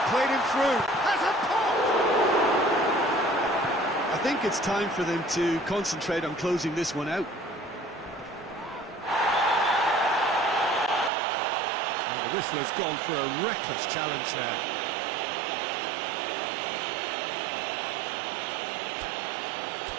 played him through. Has a pop! I think it's time for them to concentrate on closing this one out. And the whistler's gone for a reckless challenge there.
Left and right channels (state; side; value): drops out; left; at 11.1 s